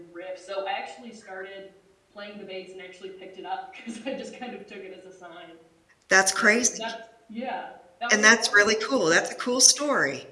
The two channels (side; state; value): both; identical; correlation 1.00